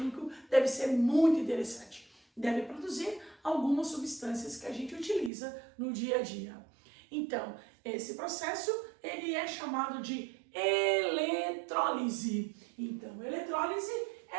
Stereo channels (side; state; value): left; drops out; at 5.3 s